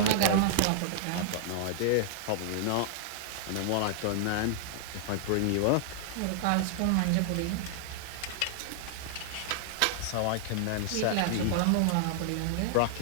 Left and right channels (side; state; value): both; different; correlation -0.01